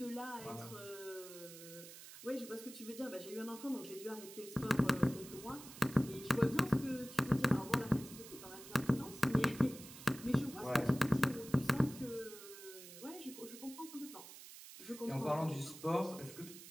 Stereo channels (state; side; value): noise; right; hiss, 15 dB below the sound